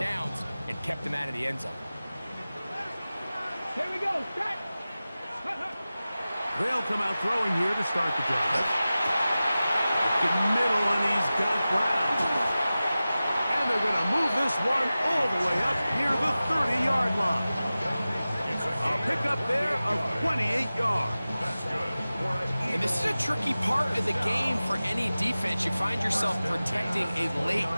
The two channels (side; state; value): both; inverted; correlation -0.96